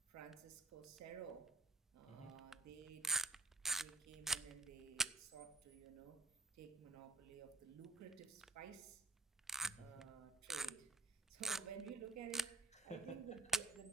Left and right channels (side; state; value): left; quieter; 3.4 dB